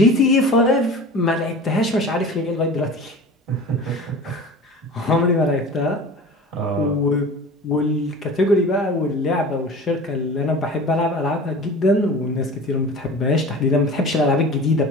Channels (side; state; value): both; normal; correlation 0.37